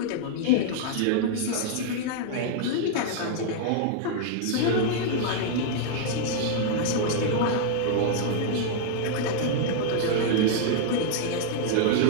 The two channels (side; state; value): both; different; correlation -0.01